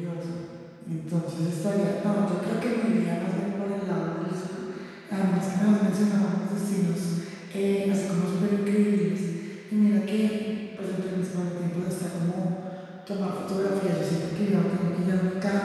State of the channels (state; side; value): identical; both; correlation 1.00